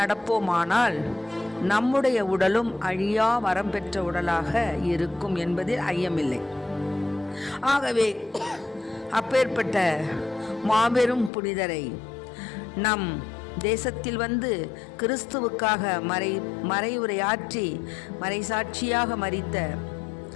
நம்முடைய உடலும் அழியா வரம் பெற்ற உடலாக இருக்கும் என்பதில் ஐயமில்லை. ஆகவே அப்பேற்பட்ட மாபெரும் புனிதரை நம் தேசத்தில் வந்து கிறிஸ்துவுக்காக மறைவுரையாற்றி மறைசாட்சியாக மரித்த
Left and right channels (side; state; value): right; drops out; at 11.3 s